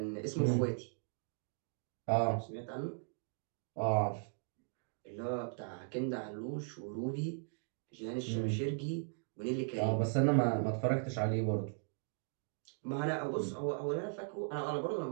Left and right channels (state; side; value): silent; left; digital silence